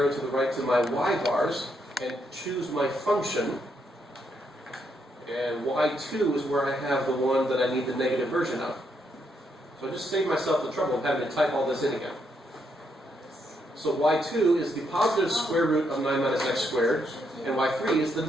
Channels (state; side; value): normal; both; correlation 0.78